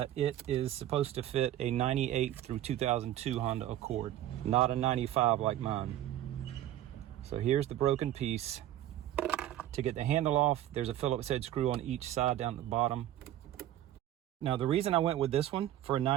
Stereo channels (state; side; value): quieter; left; 12.7 dB